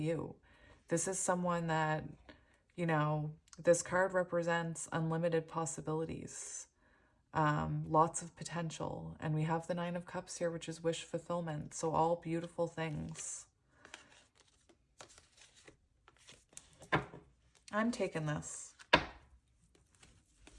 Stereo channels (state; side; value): identical; both; correlation 1.00